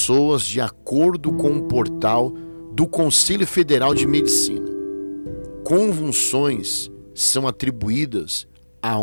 de acordo com um portal do Conselho Federal de Medicina. Convulsões são atribuídas a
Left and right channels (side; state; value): both; inverted; correlation -1.00